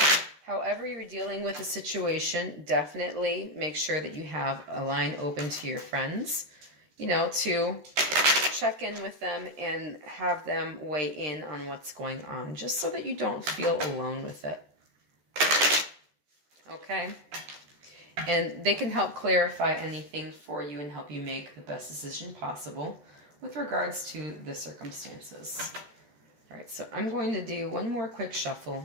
however you're dealing with a situation, definitely make sure that you have a line open to your friends, to check in with them and have them weigh in on what's going on, just so that you don't feel alone with it. Okay? And they can help clarify anything for you and help you make the best decision possible with regards to the circumstances. All right, so I'm going to do one more quick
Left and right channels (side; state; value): left; late; 13 ms